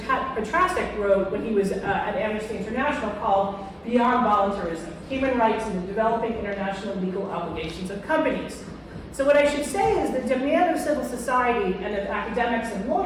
wrote when he was at Amnesty International called Beyond Voluntarism, Human Rights and the Developing International Legal Obligations of Companies. So what I should say is the demand of civil society and of academics and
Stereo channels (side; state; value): both; identical; correlation 1.00